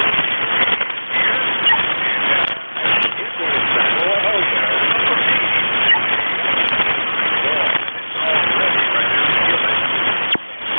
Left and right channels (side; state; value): both; inverted; correlation -1.00